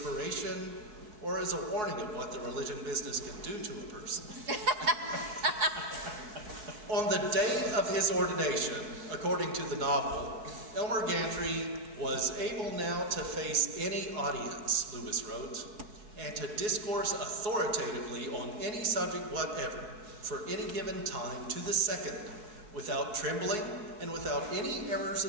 or as a warning of what the religion business can do to a person. On the day of his ordination, according to the novel, Elmer Gantry was able now to face any audience, Lewis wrote, and to discourse authoritatively on any subject whatever, for any given time to the second, without trembling and without any errors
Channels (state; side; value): late; left; 4.7 ms